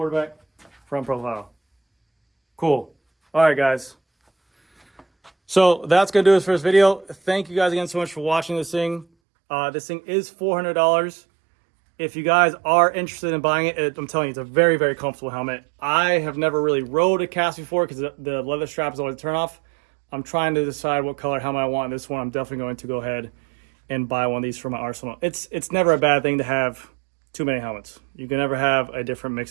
Front profile. Cool. All right, guys. So that's going to do it for this video. Thank you guys again so much for watching this thing. This thing is $400. If you guys are interested in buying it, I'm telling you, it's a very, very comfortable helmet. I have never really rode a KASK before because the leather strap is always a turn off. I'm trying to decide what color helmet I want. And this one, I'm definitely going to go ahead and buy one of these for my arsenal. It's never a bad thing to have too many helmets. You can never have a different mix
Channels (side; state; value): left; drops out; at 9.1 s